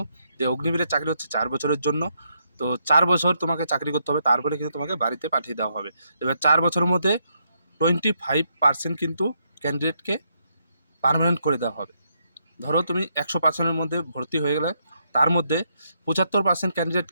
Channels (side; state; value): both; inverted; correlation -0.77